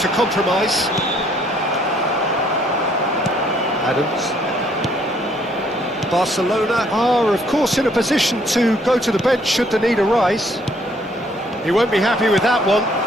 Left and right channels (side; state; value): both; normal; correlation 0.65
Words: compromise. Adams. Barcelona are, of course, in a position to go to the bench should the need arise. He won't be happy with that one.